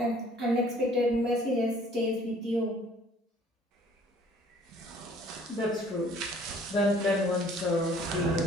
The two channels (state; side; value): normal; both; correlation 0.56